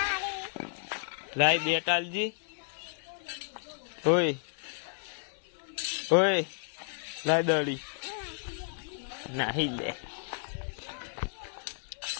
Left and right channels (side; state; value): right; silent; 56 dB below the other